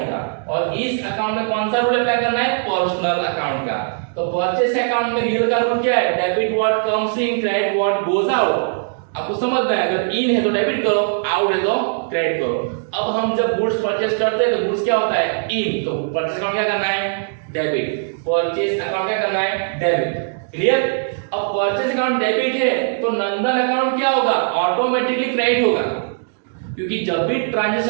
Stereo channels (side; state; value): left; silent; digital silence